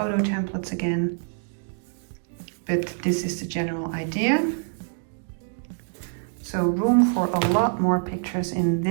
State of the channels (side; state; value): left; silent; digital silence